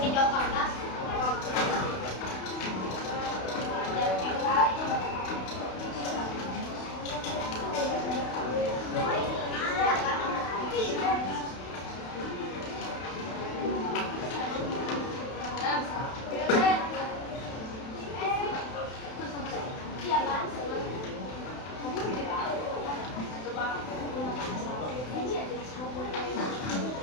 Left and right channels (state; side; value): late; right; 32 ms